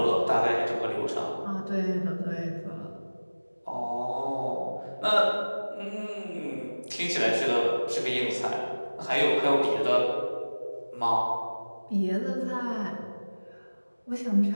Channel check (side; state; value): both; inverted; correlation -1.00